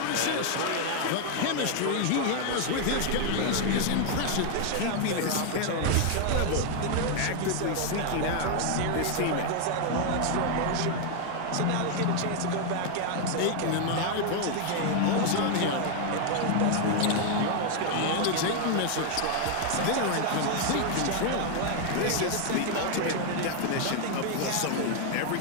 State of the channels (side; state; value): both; different; correlation 0.00